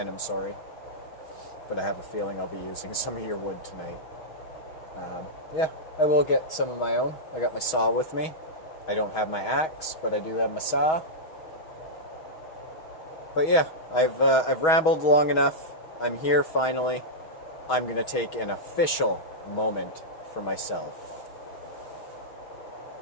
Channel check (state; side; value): late; right; 6.3 ms